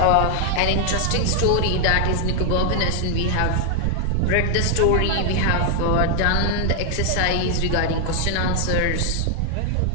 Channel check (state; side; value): different; both; correlation 0.00